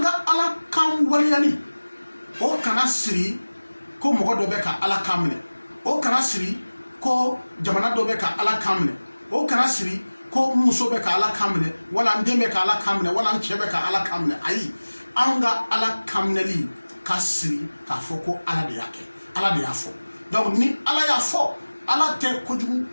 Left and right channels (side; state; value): both; inverted; correlation -1.00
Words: ka Ala kan waleyali o kana siri ko mɔgɔ dɔ bɛ ka Ala kan minɛ, o kana siri ko jamana dɔ bɛ ka Ala kan minɛ, o kana siri ko muso bɛ ka Ala kan minɛ, wala n den bɛ ka Ala kan minɛ, wala n cɛ bɛ ka Ala kan minɛ. Ayi, an ka Ala kan minɛli ka siri k'a fɔ ko Ala de y'a kɛ, Ala de y'a fɔ. Donc ni Ala y'a fɔ, Ala tɛ kojugu